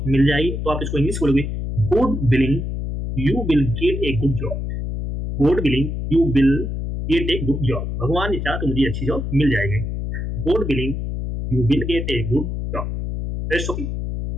मिल जाएगी, तो आप इसको इंग्लिश बोलोगे God willing you will get a good job. God willing you will get a good job. भगवान ने चाहा तो मुझे अच्छी जॉब मिल जाएगी। God willing, you will get a good job. That's okay.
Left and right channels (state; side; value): noise; left; hum, 4 dB below the sound